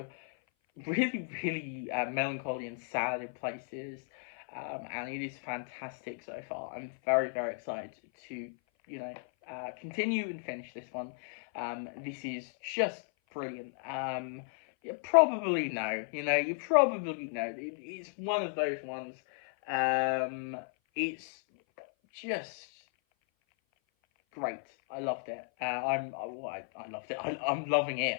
really, really melancholy and sad in places, and it is fantastic so far. I'm very, very excited to, you know, continue and finish this one. This is just brilliant. You probably know, you probably know. It's one of those ones. It's just great. I loved it. I loved it. I'm loving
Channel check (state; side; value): silent; right; 55 dB below the other